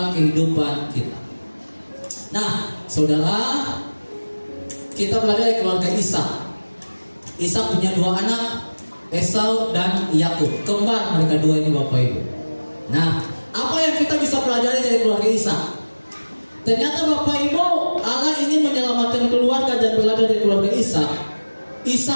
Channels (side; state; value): both; inverted; correlation -1.00